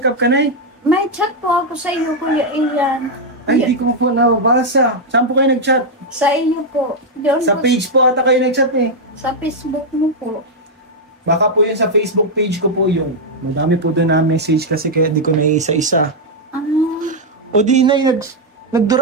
up ka, Nay? May chat po ako sa iyo, Kuya Ian. Ay, hindi ko po nababasa. Saan po kayo nag-chat? Sa iyo po. Diyon Sa po, page po ata kayo nag-chat eh. sa Facebook mo po. Baka po yun sa Facebook page ko po yun. Madami po doon na message kasi kaya hindi ko na isa-isa. O di, Nay,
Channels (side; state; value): both; normal; correlation -0.01